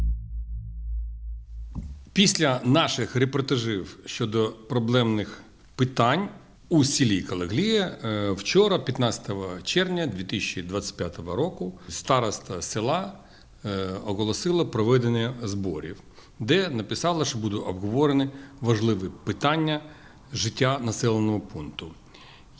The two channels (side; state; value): both; identical; correlation 1.00